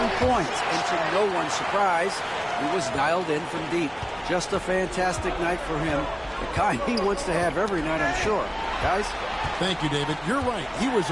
points, and to no one's surprise, he was dialed in from deep. Just a fantastic night for him, the kind he wants to have every night, I'm sure. Guys? Thank you, David. You're right. He was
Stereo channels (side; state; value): both; identical; correlation 1.00